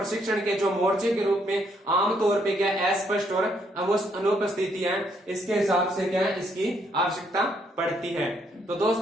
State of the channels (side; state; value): both; normal; correlation 0.71